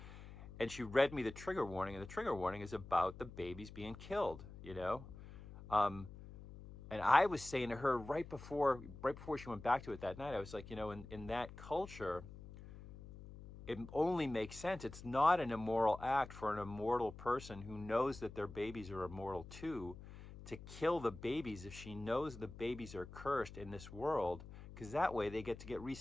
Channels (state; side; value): noise; left; hum, 14 dB below the sound